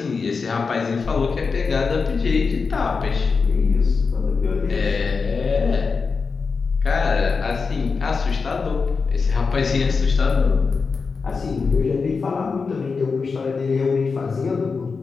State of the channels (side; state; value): right; quieter; 4.9 dB